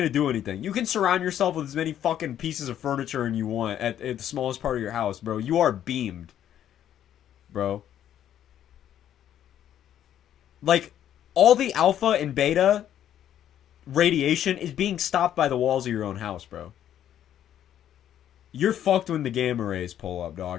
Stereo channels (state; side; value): quieter; right; 10.7 dB